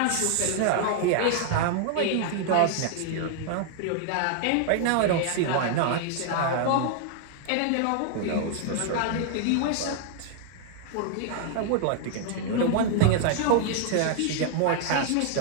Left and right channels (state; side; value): different; both; correlation 0.00